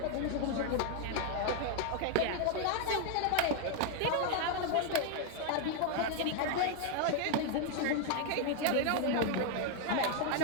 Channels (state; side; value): different; both; correlation 0.00